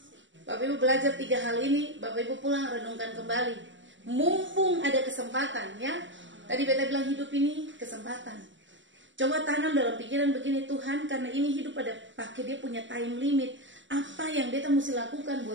Bapak Ibu belajar 3 hal ini. Bapak Ibu pulang renungkan kembali. Mumpung ada kesempatan ya. Tadi beta bilang hidup ini kesempatan. Coba tanam dalam pikiran begini, Tuhan karena ini hidup pada pakai dia punya time limit. Apa yang beta mesti lakukan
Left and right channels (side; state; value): left; late; 0.54 ms